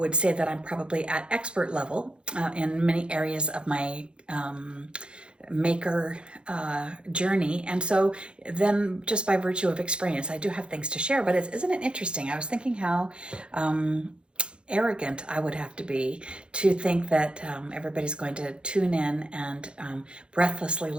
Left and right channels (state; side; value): late; left; 0.055 ms